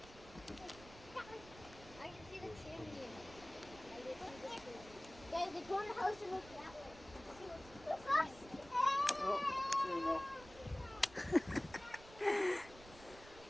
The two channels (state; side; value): noise; right; rumble, 19 dB below the sound